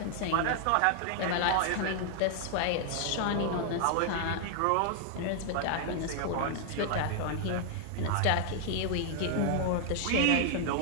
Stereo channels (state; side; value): different; both; correlation 0.00